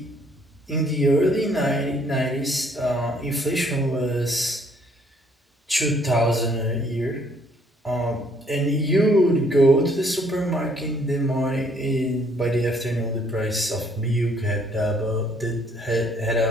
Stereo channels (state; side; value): normal; both; correlation 0.64